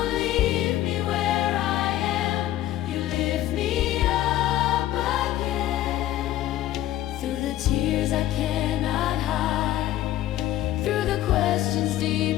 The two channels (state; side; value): quieter; right; 13.8 dB